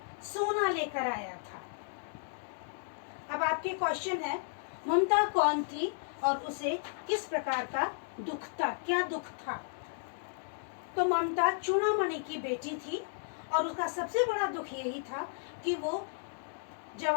सोना लेकर आया था। अब आपके क्वेश्चन है, ममता कौन थी और उसे किस प्रकार का दुख था? क्या दुख था? तो ममता चूड़ामणि की बेटी थी और उसका सबसे बड़ा दुख यही था कि वो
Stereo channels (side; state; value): right; silent; digital silence